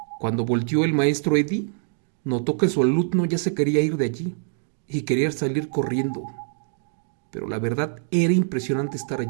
Cuando volteó el maestro Eddie, notó que su alumno ya se quería ir de allí y quería salir corriendo. Pero la verdad era impresionante estar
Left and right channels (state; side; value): silent; left; 62 dB below the other